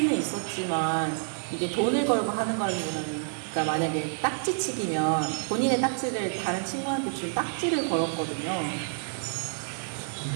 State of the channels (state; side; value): silent; left; digital silence